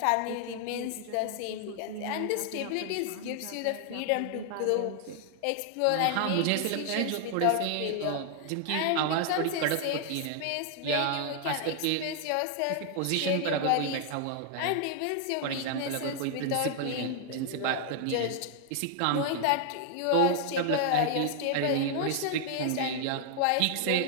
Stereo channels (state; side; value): different; both; correlation 0.00